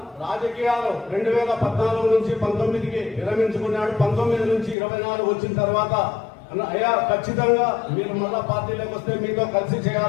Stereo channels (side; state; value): right; drops out; at 4.8 s